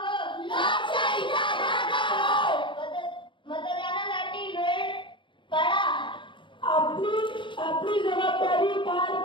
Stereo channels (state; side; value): late; right; 0.24 ms